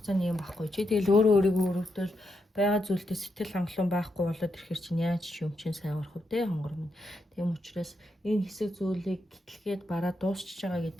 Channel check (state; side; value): normal; both; correlation 0.82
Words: юм байхгүй чи тэгэл өөрийгөө өрөвдөл байгаа зүйлдээ сэтгэл хангалуун байхгүй болоод ирэхэр чинь яаж ч юм чинь сайн урах вэ хонгор минь. Тийм учраас энэ хэсэг зүйлийг гэтлгээд бараа дуусчихж байгаа